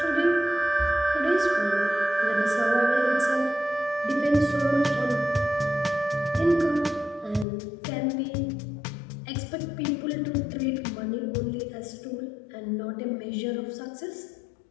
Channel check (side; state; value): right; drops out; at 7.5 s